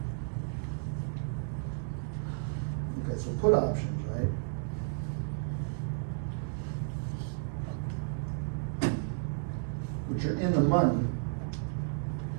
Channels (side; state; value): left; silent; digital silence